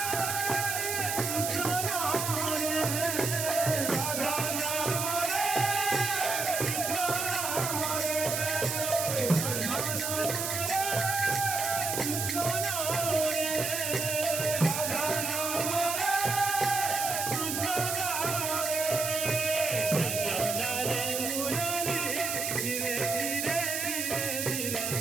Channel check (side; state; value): right; noise; hiss, 2 dB below the sound